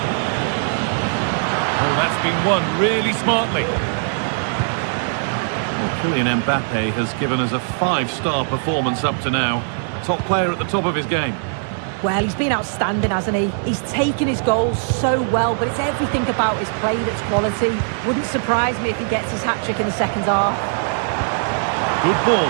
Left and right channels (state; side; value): silent; left; 65 dB below the other